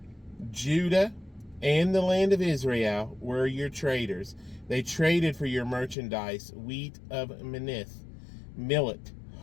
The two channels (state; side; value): drops out; right; at 6.0 s